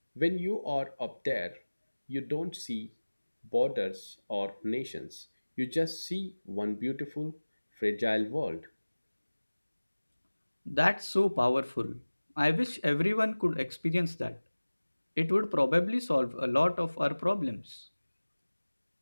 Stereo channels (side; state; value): both; inverted; correlation -1.00